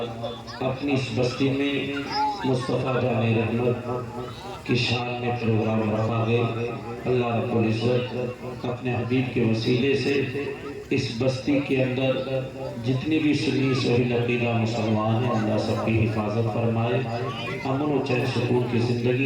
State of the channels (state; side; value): identical; both; correlation 1.00